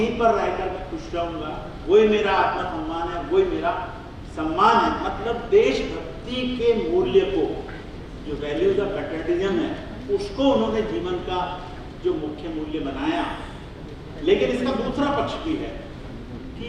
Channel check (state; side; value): identical; both; correlation 1.00